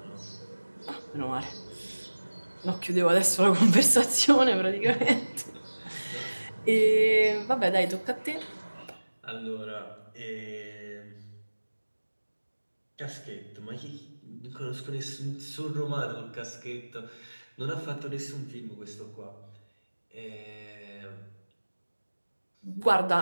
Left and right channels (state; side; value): inverted; both; correlation -1.00